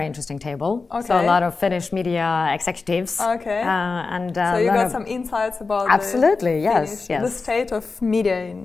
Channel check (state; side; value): quieter; right; 4.2 dB